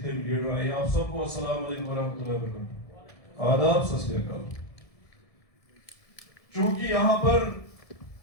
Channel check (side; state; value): right; late; 1.7 ms